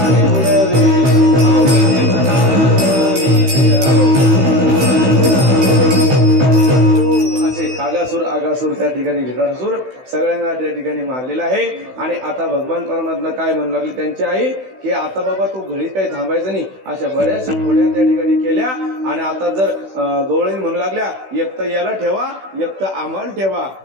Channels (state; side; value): late; left; 16 ms